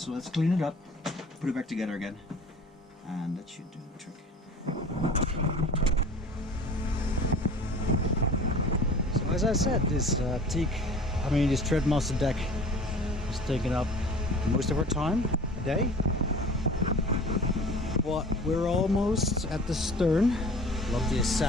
So let's clean it up, put it back together again, and that should do the trick. So as I said, this this Threadmaster deck is taking up most of our time a day. But we're almost at the stern. Lovely is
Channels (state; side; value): normal; both; correlation 0.43